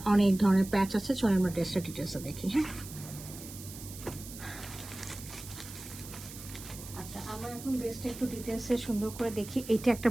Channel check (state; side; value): noise; right; hiss, 14 dB below the sound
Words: অনেক ধরনের প্যাচ আছে। চলো আমরা ড্রেসটা ডিটেলসে দেখি। হ্যাঁ, আচ্ছা, আমরা এখন ড্রেসটা একটু ডিটেলসে সুন্দর করে দেখি। এইটা একটা